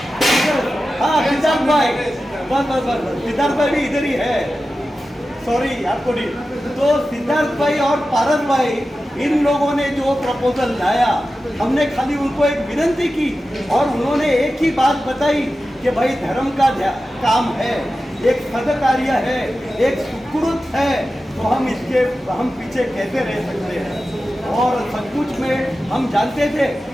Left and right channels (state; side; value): normal; both; correlation 0.93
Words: हाँ सिद्धार्थ भाई, बस सिद्धार्थ भाई भी इधर ही है, सॉरी आपको नहीं। तो सिद्धार्थ भाई और पारस भाई, इन लोगों ने जो प्रपोजल लाया, हमने खाली उनको एक विनती की और उन्होंने एक ही बात बताई कि भाई धर्म का काम है, एक सदकार्य है, एक सुकृत है, तो हम पीछे कैसे रह सकते हैं। और सचमुच में हम जानते थे